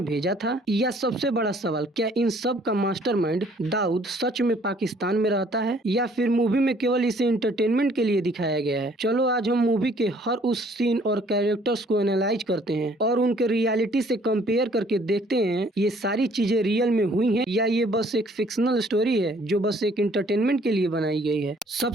भेजा था? या सबसे बड़ा सवाल, क्या इन सब का मास्टरमाइंड दाऊद सच में पाकिस्तान में रहता है या फिर मूवी में केवल इसे एंटरटेनमेंट के लिए दिखाया गया है? चलो आज हम मूवी के हर उस सीन और कैरेक्टर्स को एनालाइज करते हैं और उनके रियलिटी से कंपेयर करके देखते हैं ये सारी चीजें रियल में हुई हैं या ये बस एक फिक्शनल स्टोरी है जो बस एक एंटरटेनमेंट के लिए बनाई गई है।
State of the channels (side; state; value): both; normal; correlation 0.59